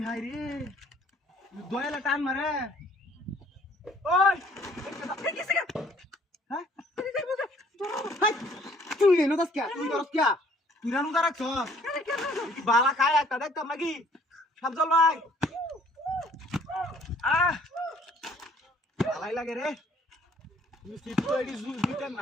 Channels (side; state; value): both; normal; correlation 0.59